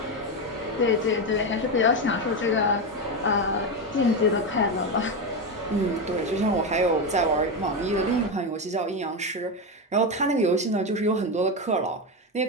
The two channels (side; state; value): both; normal; correlation 0.12